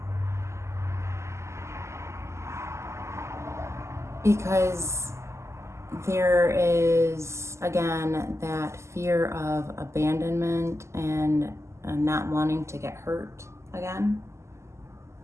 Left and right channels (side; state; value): left; late; 0.13 ms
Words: Because there is, again, that fear of abandonment and not wanting to get hurt again.